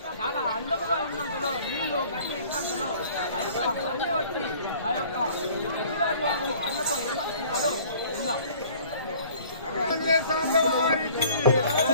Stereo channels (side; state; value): both; inverted; correlation -0.51